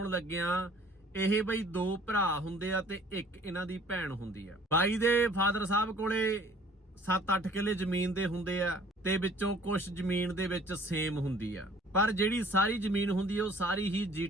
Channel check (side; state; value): both; normal; correlation 0.53